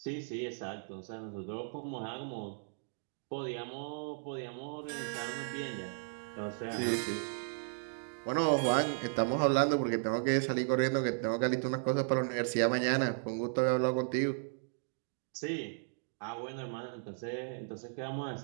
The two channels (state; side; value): silent; left; digital silence